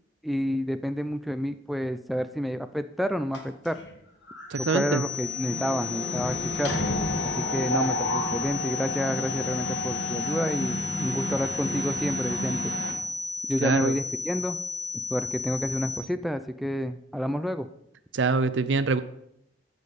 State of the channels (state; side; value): normal; both; correlation 0.64